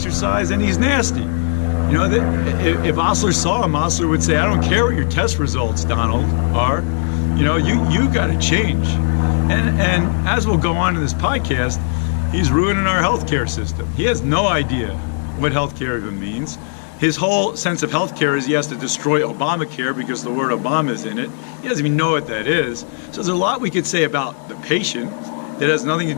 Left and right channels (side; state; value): right; silent; digital silence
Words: and he's nasty. If Osler saw him, Osler would say, I don't care what your test results, Donald, are. You got to change. And as we'll go on in this podcast, he's ruining our healthcare system. He has no idea what healthcare even means. His whole sense of healthcare is he has to destroy Obamacare because the word Obama is in it. He doesn't even know what that is. So there's a lot we could say about the patient that has nothing to